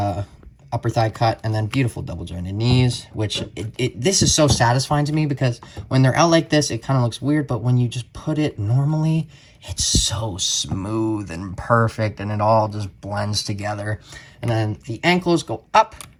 upper thigh cut, and then beautiful double jointed knees, which this is so satisfying to me because when they're out like this, it kind of looks weird, but when you just put it normally, it's so smooth and perfect, and it all just blends together. And then the ankles go up,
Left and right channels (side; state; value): both; identical; correlation 1.00